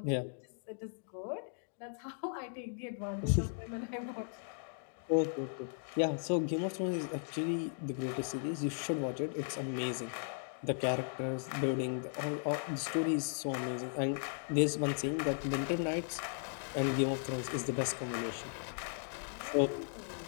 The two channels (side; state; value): right; silent; digital silence